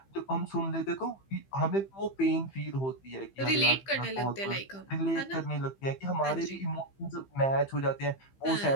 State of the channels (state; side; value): late; right; 15 ms